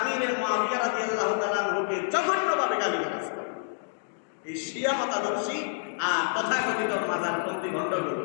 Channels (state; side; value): silent; right; digital silence